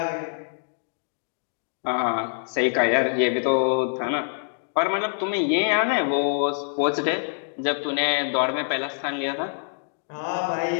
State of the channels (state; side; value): silent; right; digital silence